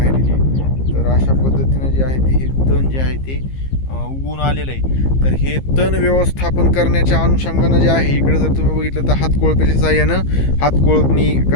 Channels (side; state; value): right; late; 15 ms